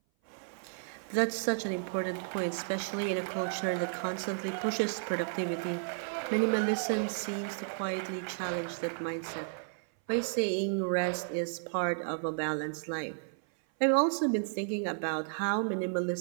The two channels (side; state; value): left; silent; 56 dB below the other